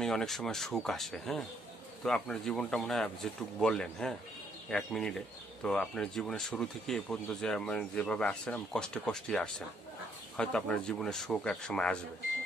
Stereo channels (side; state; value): both; normal; correlation 0.70